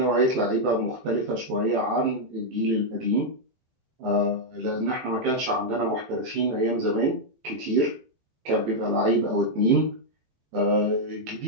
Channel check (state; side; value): late; left; 18 ms